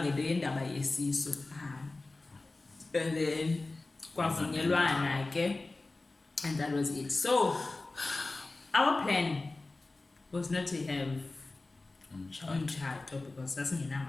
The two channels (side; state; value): right; quieter; 3.3 dB